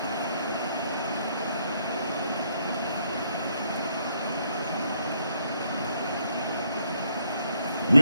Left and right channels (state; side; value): inverted; both; correlation -0.71